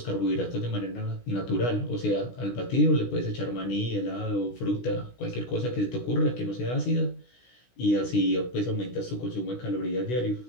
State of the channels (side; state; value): right; late; 16 ms